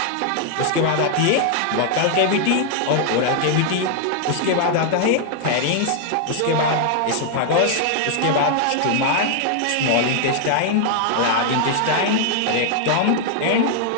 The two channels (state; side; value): different; both; correlation 0.00